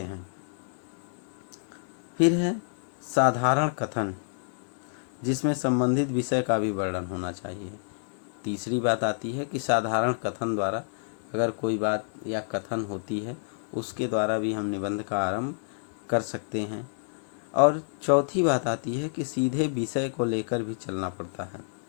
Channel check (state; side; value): silent; right; digital silence